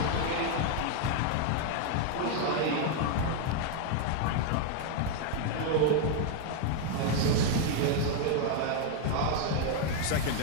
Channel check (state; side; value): different; both; correlation 0.00